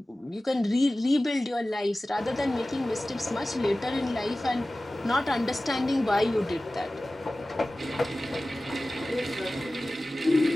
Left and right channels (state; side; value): normal; both; correlation 0.97